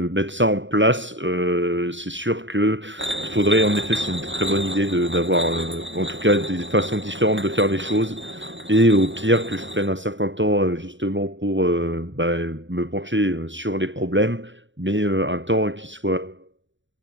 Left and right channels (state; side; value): late; left; 0.54 ms